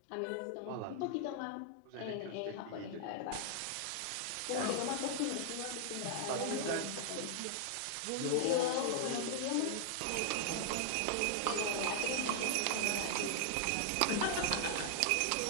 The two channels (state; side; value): different; both; correlation 0.00